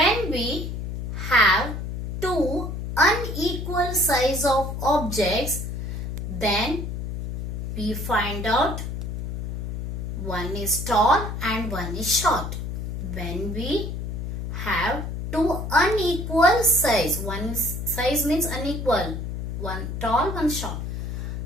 we have two unequal size of objects, then we find out one is tall and one is short. When we have two unequal size, one size means unequal, one tall, one short,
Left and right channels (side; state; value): left; noise; hum, 5 dB below the sound